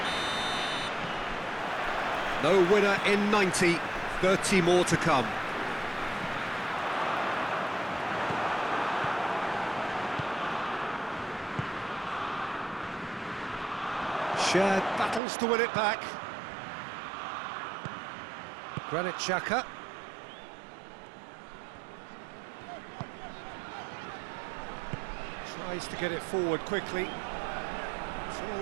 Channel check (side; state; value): left; drops out; at 15.2 s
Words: No winner in 90, 30 more to come. Shared battles to win it back. Granit Xhaka. Tries to get it forward quickly. It's